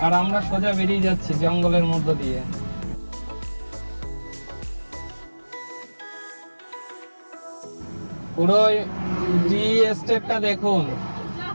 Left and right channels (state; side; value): inverted; both; correlation -1.00